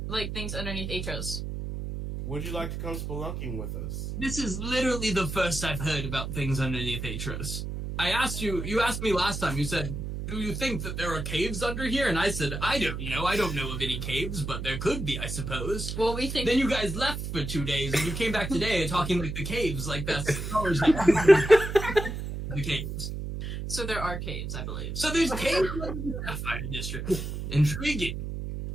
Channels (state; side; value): noise; right; hum, 5 dB below the sound